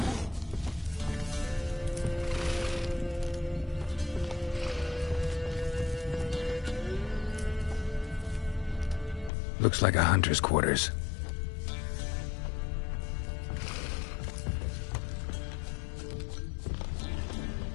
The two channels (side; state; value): right; drops out; at 9.3 s